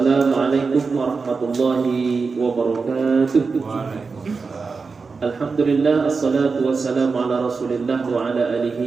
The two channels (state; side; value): quieter; left; 4.7 dB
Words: warahmatullahi wabarakatuh. Alhamdulillah, assalatu wassalamu ala rasulillah wa ala